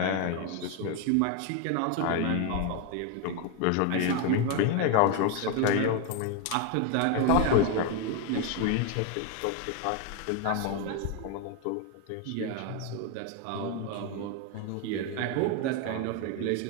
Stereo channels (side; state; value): both; different; correlation 0.01